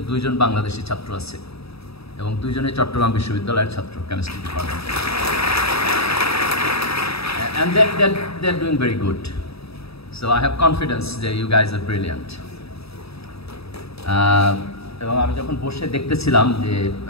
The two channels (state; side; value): late; right; 0.77 ms